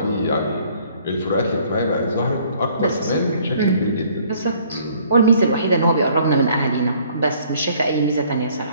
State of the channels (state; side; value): inverted; both; correlation -0.60